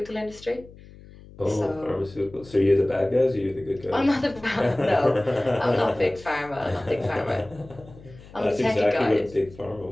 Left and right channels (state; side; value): noise; left; hum, 20 dB below the sound